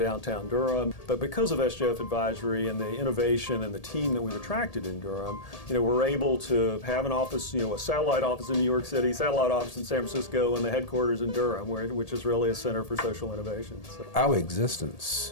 Durham. But because of SGF Advisory and the innovation and the team that we've attracted in Durham, we're able to have an office, a satellite office in New York City, satellite office in San Francisco, and the headquarters in Durham, which is really a center for social innovation. So. Our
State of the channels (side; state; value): right; late; 1.8 ms